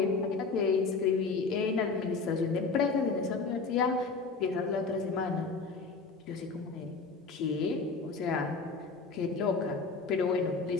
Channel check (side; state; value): right; quieter; 4.3 dB